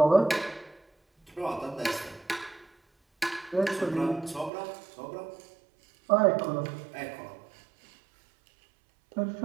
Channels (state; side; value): drops out; left; at 4.5 s